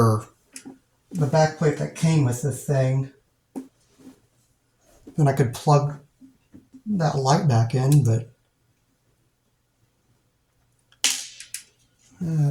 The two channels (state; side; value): identical; both; correlation 1.00